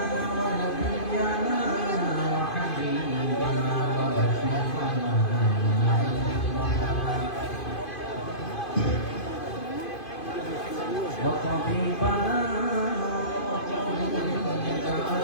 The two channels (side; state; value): right; late; 2.5 ms